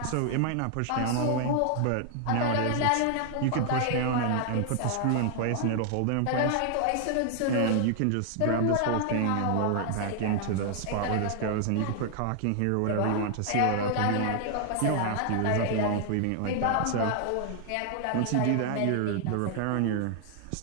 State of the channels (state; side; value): different; both; correlation 0.00